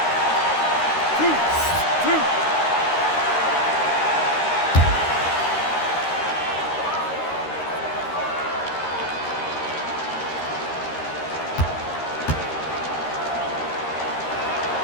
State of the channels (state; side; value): late; right; 13 ms